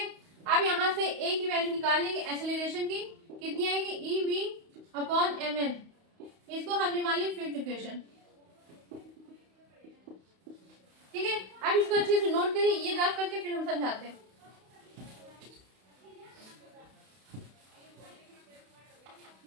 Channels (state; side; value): late; left; 31 ms